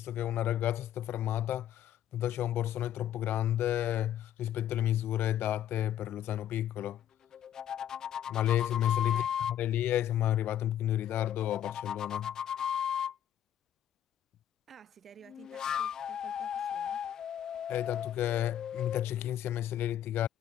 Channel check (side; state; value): right; quieter; 11.0 dB